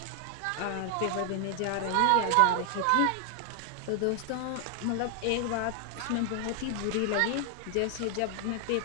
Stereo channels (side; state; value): both; different; correlation 0.00